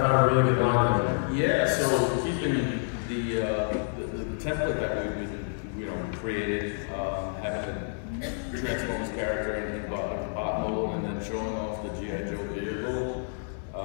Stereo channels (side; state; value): right; silent; digital silence